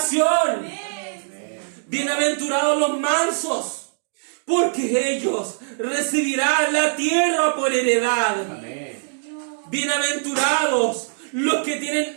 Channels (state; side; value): silent; left; digital silence